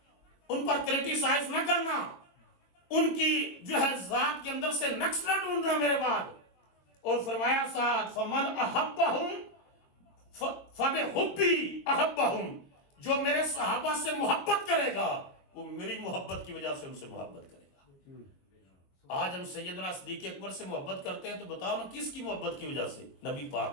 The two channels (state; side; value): late; right; 22 ms